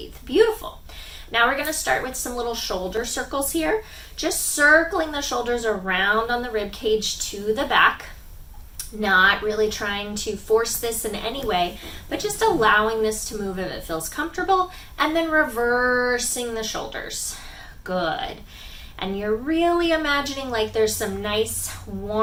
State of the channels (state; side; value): identical; both; correlation 1.00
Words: Beautiful. Now we're going to start with some little shoulder circles here. Just circling the shoulders around on the rib cage to the back. Not really trying to force this in any way, but just allowing this to move if it feels comfortable. And then reversing the shoulders. Good. And you're really imagining like there's some nice,